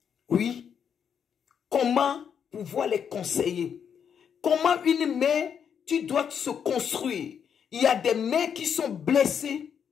Oui. Comment pouvoir les conseiller? Comment une mère, tu dois se construire? Il y a des mères qui sont blessées.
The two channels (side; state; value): right; quieter; 7.7 dB